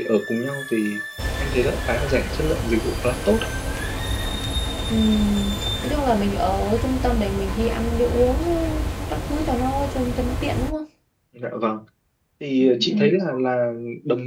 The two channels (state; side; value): identical; both; correlation 1.00